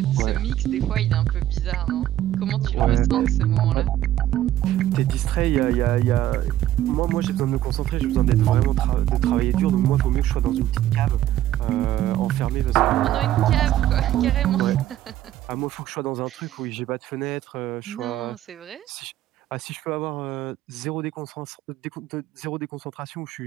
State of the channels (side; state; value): left; quieter; 13.0 dB